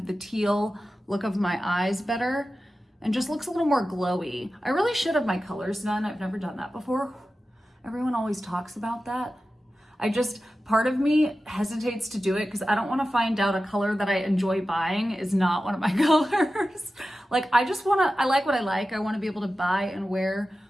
the teal look of my eyes better and just looks a little more glowy. I really should have my colors done. I've never done that before. Everyone always talks about that. Part of me hesitates to do it because I don't want to find out a color that I enjoy buying is not one of my colors. Like, I like what I like. I want to be able to buy and wear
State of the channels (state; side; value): normal; both; correlation 0.94